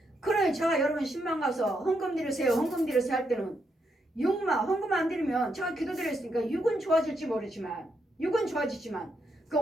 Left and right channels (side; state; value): both; normal; correlation 0.80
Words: 그러니 제가 여러분 신방 가서 헌금 드리세요 할 때는 육만 헌금 안 드리면 제가 기도드렸으니까 육은 좋아질지 모르지만 육은 좋아지지만 그